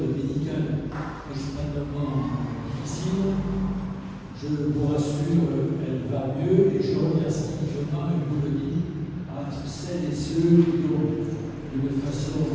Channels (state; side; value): identical; both; correlation 1.00